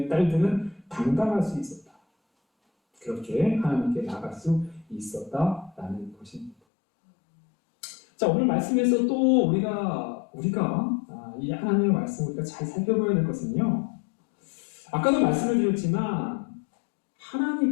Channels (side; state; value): right; drops out; at 6.6 s